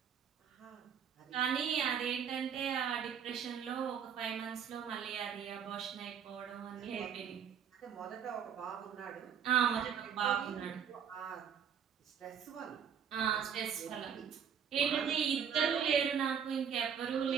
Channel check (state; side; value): quieter; left; 7.9 dB